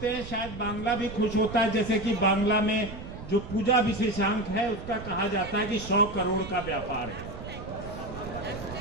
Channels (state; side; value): noise; right; rumble, 11 dB below the sound